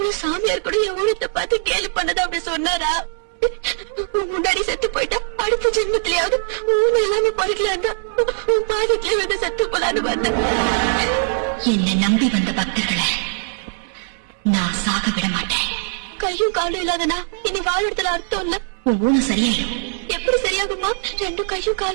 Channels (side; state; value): left; silent; 65 dB below the other